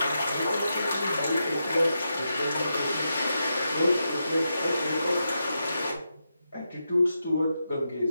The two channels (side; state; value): both; inverted; correlation -0.86